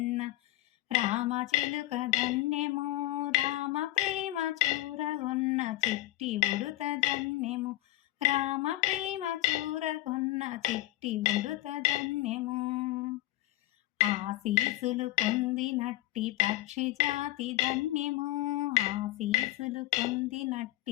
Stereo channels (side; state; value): right; quieter; 16.4 dB